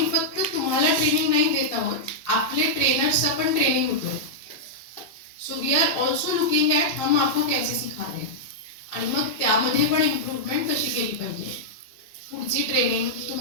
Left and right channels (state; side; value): late; right; 2.9 ms